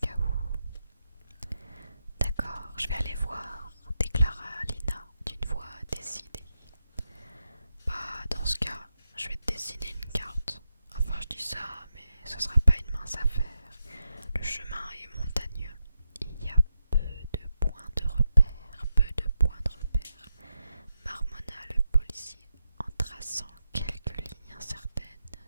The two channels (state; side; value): inverted; both; correlation -0.86